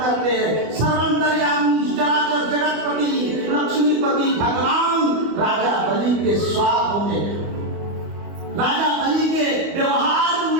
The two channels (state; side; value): late; left; 24 ms